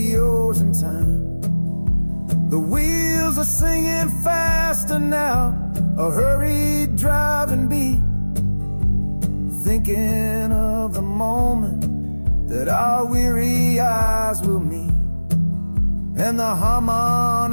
in time. The wheels are singing faster now, a hurried driving beat, thinking of the moment that our weary eyes will meet. And the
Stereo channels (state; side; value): inverted; both; correlation -1.00